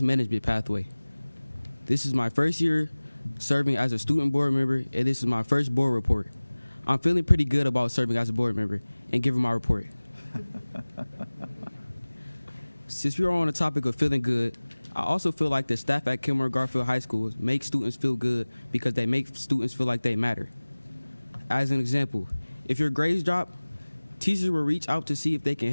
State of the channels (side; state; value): both; inverted; correlation -1.00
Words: pathway. This is my first year serving as a student board member, and this is my first board report. I'm feeling pretty good about serving as a board member and giving my report. Since we are on the topic of feeling good, I also feel like the staff at Kenmore Garfield High School make students feel good because they make students feel like they matter. As an example, if your grades drop, teachers will reach out to see if they can